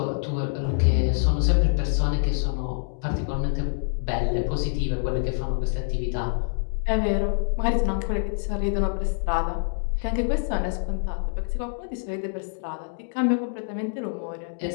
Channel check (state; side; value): silent; right; digital silence